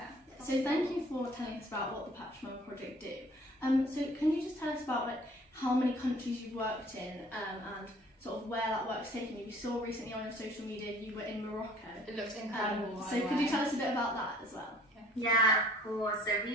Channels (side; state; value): both; normal; correlation 0.53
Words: So thank you for telling us about what the Pachamama Project do. So can you just tell us about like how many countries you've worked in and sort of where that work's taken you? We saw recently on your social media you were in Morocco. It looks incredible. So could you tell us a bit about that as well? Yeah, of course. So